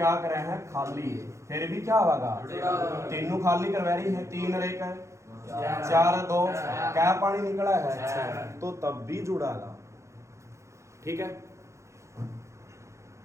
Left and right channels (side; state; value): left; late; 0.14 ms